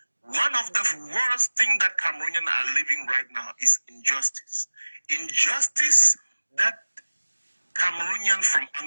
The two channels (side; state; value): both; inverted; correlation -1.00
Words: One of the worst things that Cameroonians are living right now is injustice. injustice that Cameroonians from